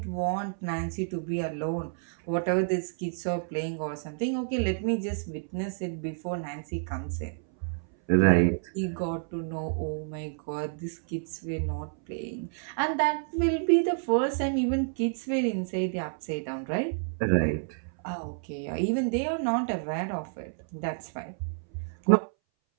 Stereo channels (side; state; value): left; silent; 58 dB below the other